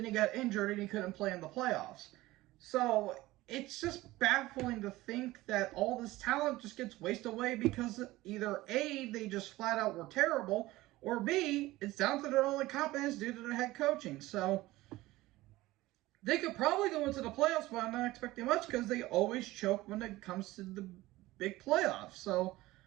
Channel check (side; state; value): left; quieter; 18.1 dB